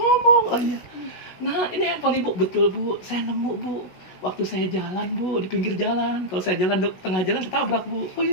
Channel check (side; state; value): right; late; 16 ms